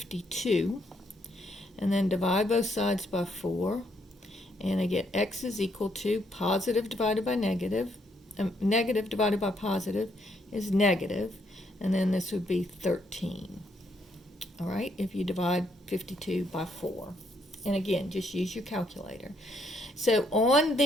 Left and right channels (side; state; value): both; normal; correlation 0.73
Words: And then divide both sides by 4. And I get x is equal to positive divided by negative. Negative divided by positive is negative. And then this would be 13. All right, if you divide 52 by 4. And again, just use your calculator. So on